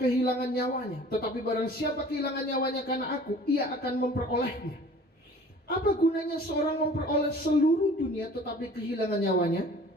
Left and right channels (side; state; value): both; normal; correlation 0.48